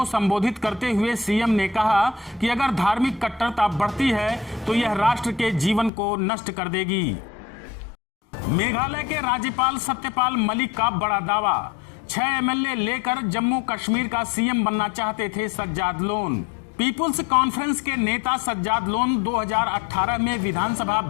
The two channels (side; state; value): right; drops out; at 5.9 s